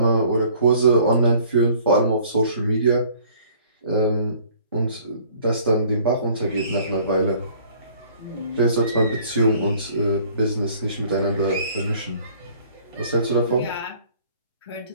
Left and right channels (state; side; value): inverted; both; correlation -0.55